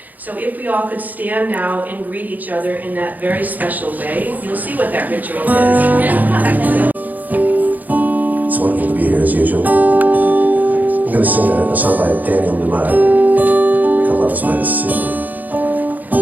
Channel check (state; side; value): late; left; 0.082 ms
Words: So if we all could stand now and greet each other in that very special way, you'll see what that ritual is. It's wonderful to be here as usual. I'm going to sing a song by Daniel Lumar called Love Is My Decision.